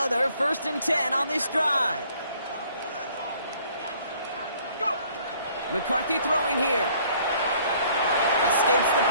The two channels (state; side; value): inverted; both; correlation -0.59